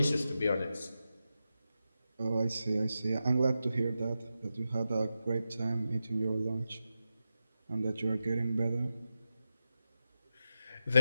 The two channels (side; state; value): both; inverted; correlation -0.90